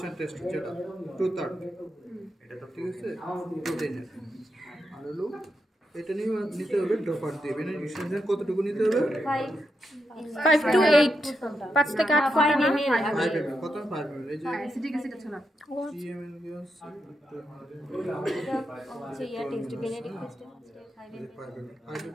টেস্ট যেটা 2/3 এটা তো ঠিক আছে প্রোটিনের আর হলো এটা নিয়ে নিতে হবে ড্রপার দিয়ে বেনিফিশিয়াল কতটুকু নিতে হবে 5 to 8 5 থেকে 8 5 না ml কত 5 ml এই যে অ্যাসিডিক অ্যাসিড আছে না GML গ্যাস আচ্ছা ইয়া টেস্ট বেনেডিক টেস্ট 5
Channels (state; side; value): normal; both; correlation 0.84